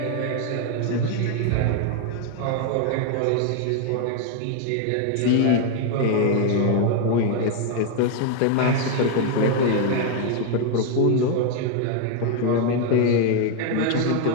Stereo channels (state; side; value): different; both; correlation 0.00